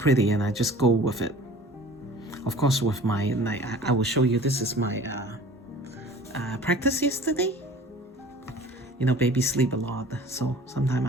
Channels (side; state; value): both; normal; correlation 0.46